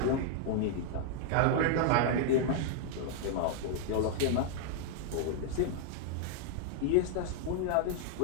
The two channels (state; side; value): different; both; correlation -0.01